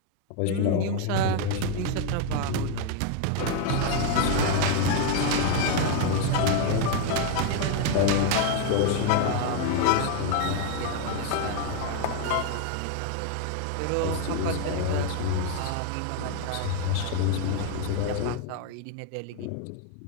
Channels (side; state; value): both; different; correlation 0.01